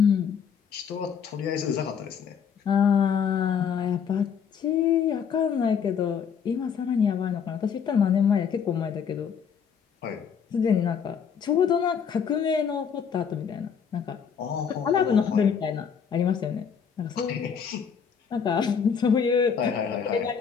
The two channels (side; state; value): right; quieter; 7.0 dB